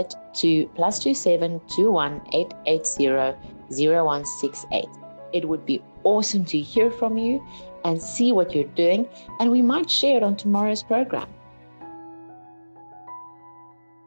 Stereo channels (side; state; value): both; inverted; correlation -1.00